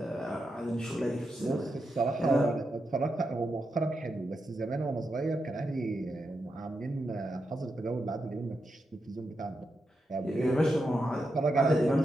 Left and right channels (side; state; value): both; normal; correlation 0.86